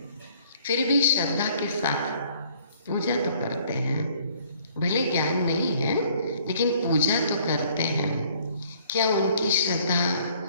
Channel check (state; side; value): inverted; both; correlation -0.60